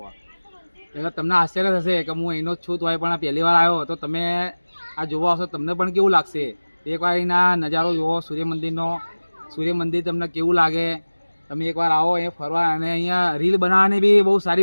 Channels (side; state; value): both; inverted; correlation -1.00